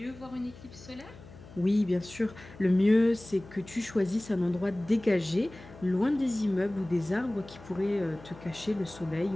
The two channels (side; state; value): left; noise; hum, 19 dB below the sound